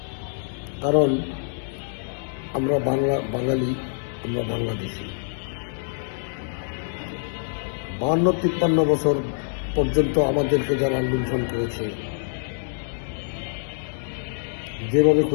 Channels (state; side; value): silent; right; digital silence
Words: কারণ আমরা বাঙালি, আমরা বাংলাদেশি। 52-53 বছর পর্যন্ত আমাদেরকে যারা লুণ্ঠন করেছে, যেভাবে